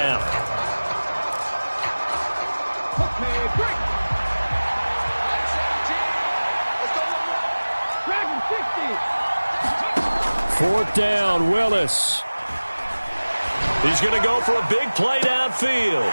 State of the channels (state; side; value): inverted; both; correlation -1.00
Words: 4th down, Willis. He's going to go for a big play downfield.